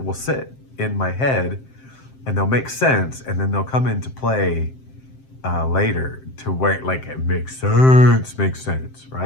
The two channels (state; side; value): late; right; 7.6 ms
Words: will sit in my head and they'll make sense, and then they'll come into play later to where, like, it makes sense,